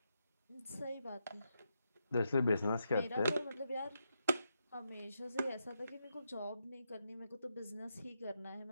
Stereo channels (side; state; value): both; inverted; correlation -0.83